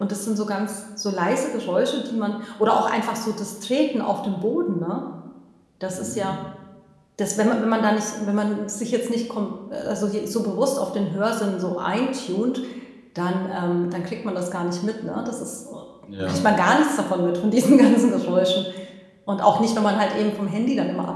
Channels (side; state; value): both; identical; correlation 1.00